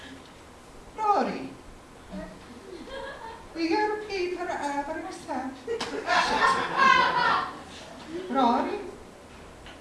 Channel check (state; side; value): identical; both; correlation 1.00